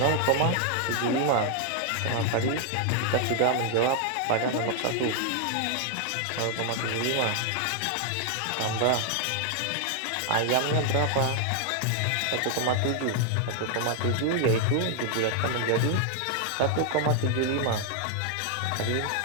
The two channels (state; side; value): different; both; correlation 0.00